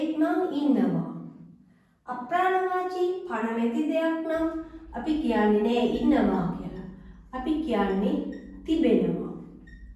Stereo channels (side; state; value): both; identical; correlation 1.00